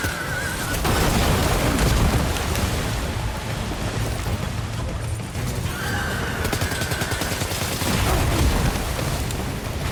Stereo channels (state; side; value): identical; both; correlation 1.00